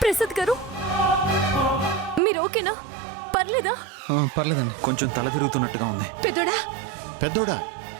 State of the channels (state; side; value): drops out; left; at 2.2 s